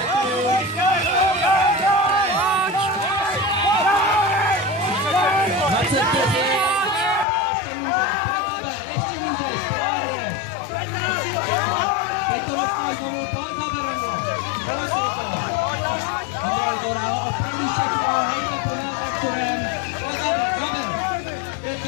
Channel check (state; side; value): drops out; right; at 7.2 s